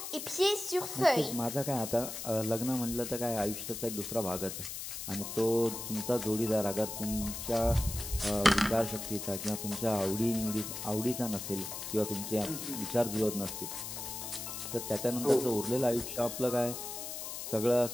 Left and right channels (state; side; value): noise; left; hiss, 7 dB below the sound